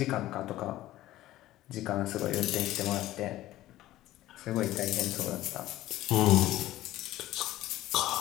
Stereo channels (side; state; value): right; quieter; 15.3 dB